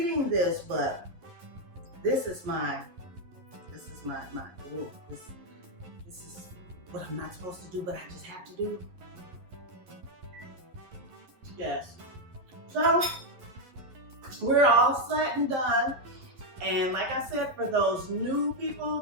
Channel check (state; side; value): late; left; 11 ms